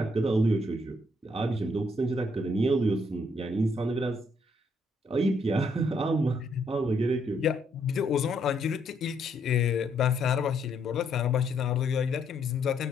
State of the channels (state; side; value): normal; both; correlation 0.72